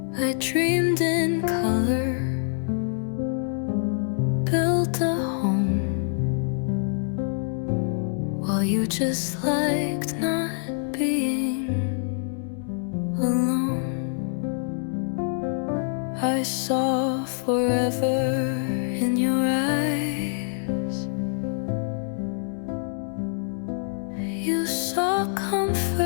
I dreamed in color, built a home, while you just liked not being alone. I saw forever in your eyes. You saw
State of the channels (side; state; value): right; silent; 60 dB below the other